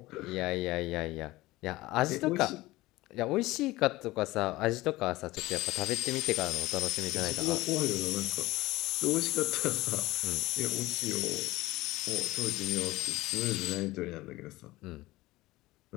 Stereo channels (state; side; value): quieter; right; 18.9 dB